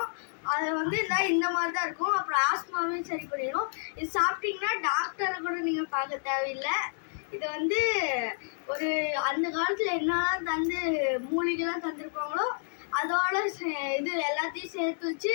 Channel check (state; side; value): silent; right; digital silence